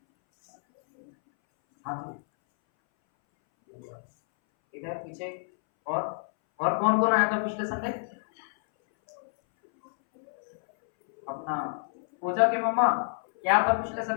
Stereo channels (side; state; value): right; silent; 59 dB below the other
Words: हाँ जी, इधर पीछे। और कौन कौन आया था पिछले संडे? अपना पूजा के मम्मा। क्या था पिछले